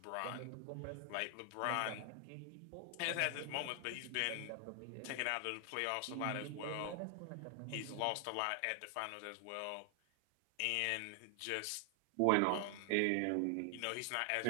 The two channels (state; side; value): different; both; correlation 0.00